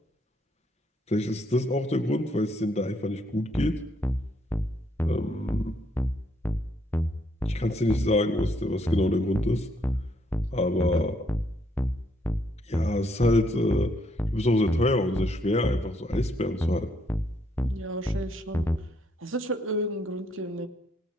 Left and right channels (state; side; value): normal; both; correlation 0.72